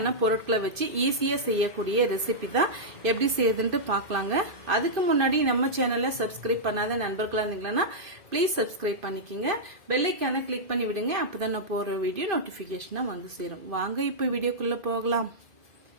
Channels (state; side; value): late; left; 2.5 ms